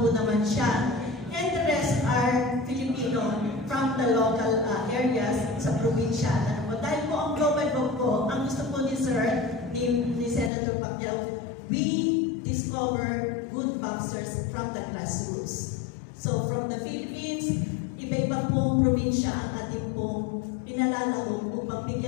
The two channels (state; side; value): drops out; right; at 10.5 s